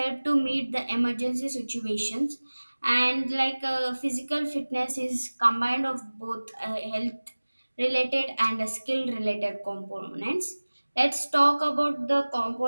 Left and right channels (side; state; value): both; inverted; correlation -1.00